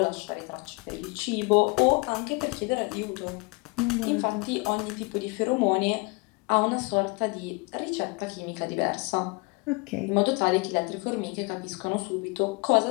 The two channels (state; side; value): quieter; right; 29.1 dB